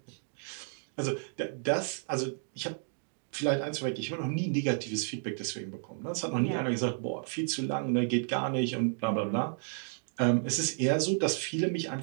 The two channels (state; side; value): silent; left; 56 dB below the other